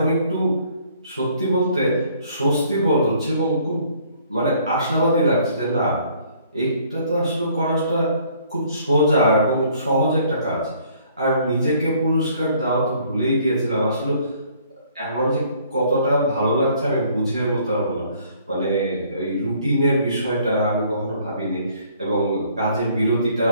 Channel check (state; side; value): inverted; both; correlation -0.60